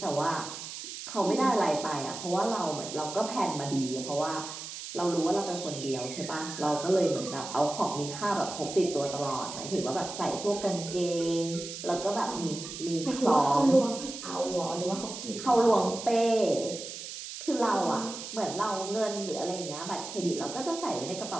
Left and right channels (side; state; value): right; noise; hiss, 9 dB below the sound